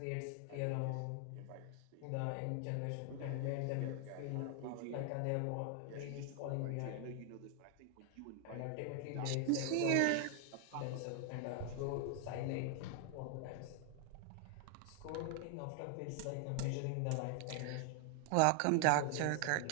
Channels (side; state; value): both; different; correlation 0.00